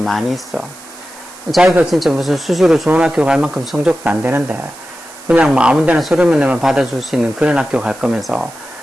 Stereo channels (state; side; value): noise; right; hiss, 19 dB below the sound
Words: 있어. 자기가 진짜 무슨 수시로 좋은 학교 갈 만큼 성적도 안 되는데 그냥 뭐 아무 데나 서류만 내면 받아줄 수 있는 그런 학교 갈 거면서